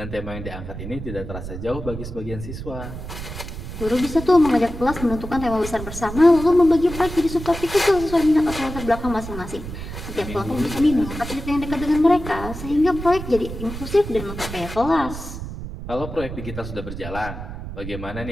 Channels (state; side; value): noise; right; rumble, 9 dB below the sound